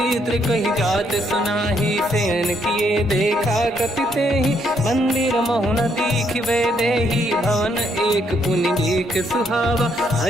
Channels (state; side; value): normal; both; correlation 0.72